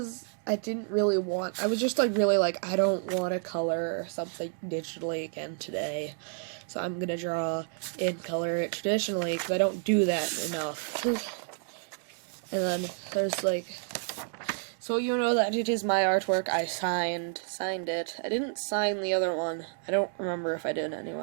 I didn't really want, I was just like really like, I don't want to color something digitally again today. So I'm going to draw and color it traditionally because I don't do that enough. And then there's like, so you know that it is my artwork. I signed it. I didn't sign the other one. I don't remember if I did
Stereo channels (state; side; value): silent; left; 58 dB below the other